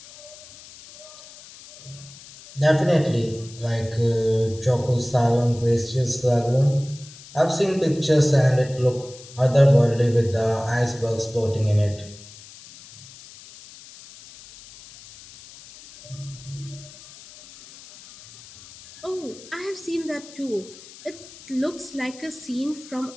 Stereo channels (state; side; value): noise; left; hiss, 19 dB below the sound